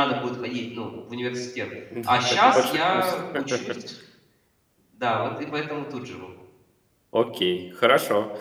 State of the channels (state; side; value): identical; both; correlation 1.00